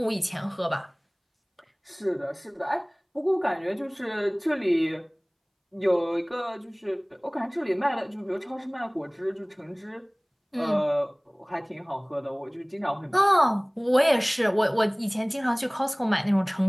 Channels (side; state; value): both; identical; correlation 1.00